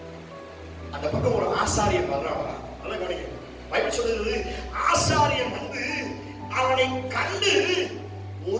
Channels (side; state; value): both; identical; correlation 1.00